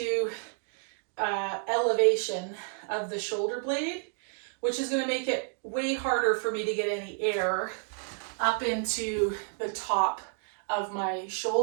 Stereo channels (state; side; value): silent; left; 58 dB below the other